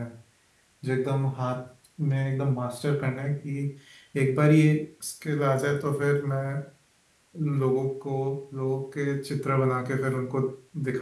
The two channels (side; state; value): both; identical; correlation 1.00